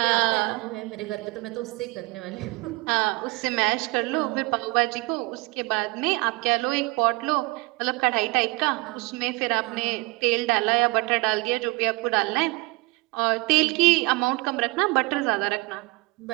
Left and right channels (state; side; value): quieter; left; 24.2 dB